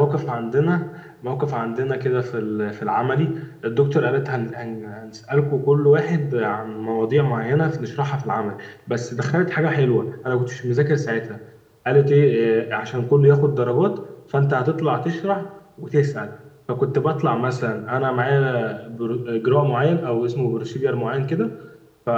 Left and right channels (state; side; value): identical; both; correlation 1.00